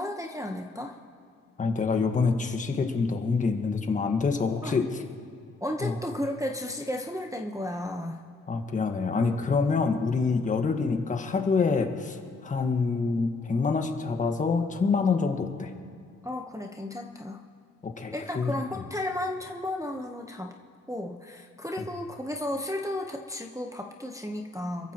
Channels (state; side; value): quieter; right; 3.7 dB